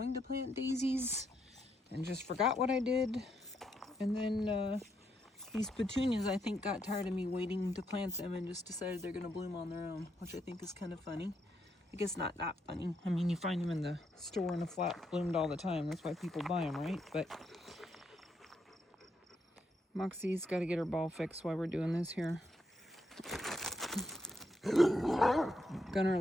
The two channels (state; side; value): normal; both; correlation 0.78